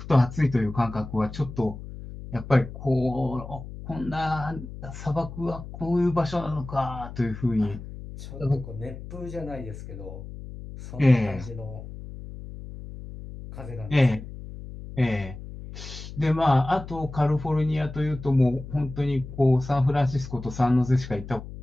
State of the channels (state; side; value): noise; left; hum, 12 dB below the sound